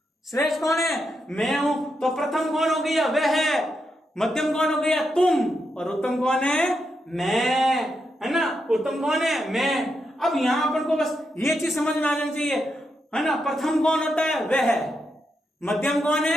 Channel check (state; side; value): normal; both; correlation 0.84